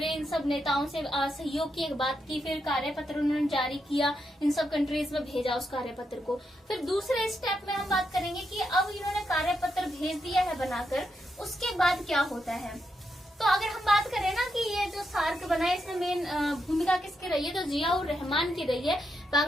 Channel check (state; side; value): normal; both; correlation 0.82